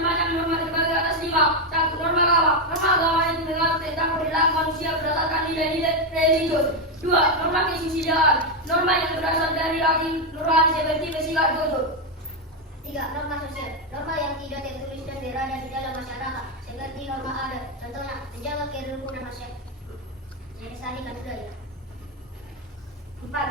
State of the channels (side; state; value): both; normal; correlation 0.05